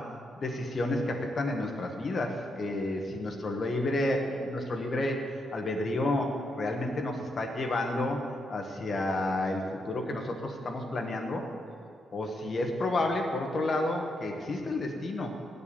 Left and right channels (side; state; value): both; normal; correlation 0.81